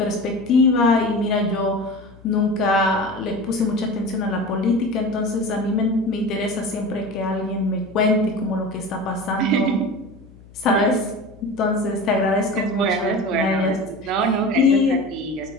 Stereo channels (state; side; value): noise; left; hum, 23 dB below the sound